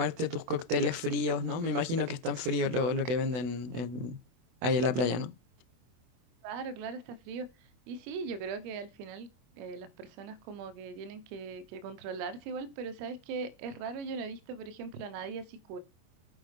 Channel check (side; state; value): left; late; 24 ms